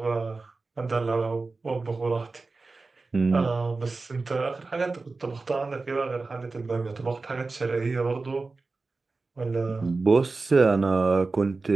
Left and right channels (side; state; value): left; quieter; 3.8 dB